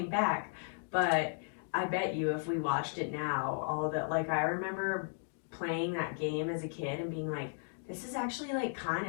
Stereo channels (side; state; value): right; silent; digital silence